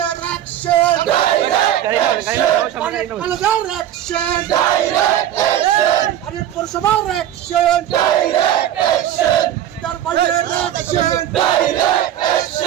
অ্যাকশন, কলেজের অ্যাকশন, ভারত পৌরসভার অ্যাকশন, পিতার ভাইয়ের অ্যাকশন,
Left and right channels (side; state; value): left; quieter; 11.5 dB